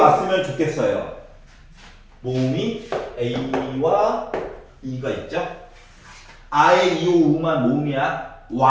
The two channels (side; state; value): both; identical; correlation 1.00